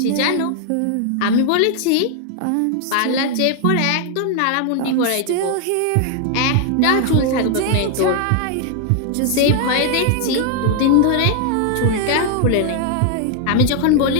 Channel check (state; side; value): different; both; correlation 0.00